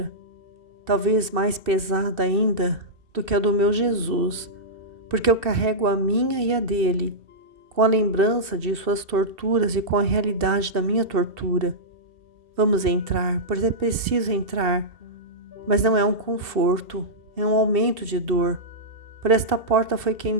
talvez mais pesada ainda do que a do meu Jesus, porque eu carrego a minha e a dele, com a lembrança de suas torturas e com a realidade da minha tortura. Vamos entrar, pois é preciso entrar, mas não é um conforto, é um aumento de dor. Por esta porta foi que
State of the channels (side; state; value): left; late; 2.7 ms